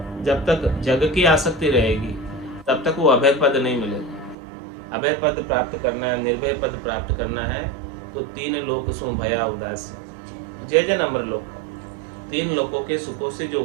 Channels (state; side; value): drops out; left; at 4.4 s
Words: जब तक जग की आसक्ति रहेगी तब तक वो अभय पद नहीं मिलेगा। अभय पद प्राप्त करना है, निर्भय पद प्राप्त करना है, तो 3 लोक सो भया उदासी, जय जन अमर लोक। 3 लोकों के सुखों से जो